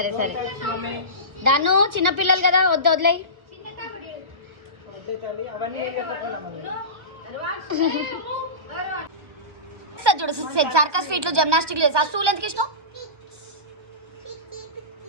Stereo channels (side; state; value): left; late; 1.3 ms